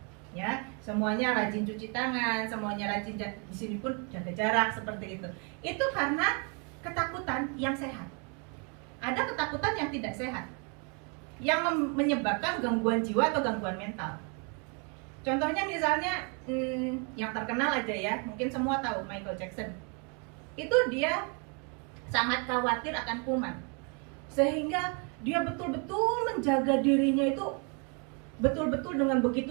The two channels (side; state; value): left; quieter; 35.9 dB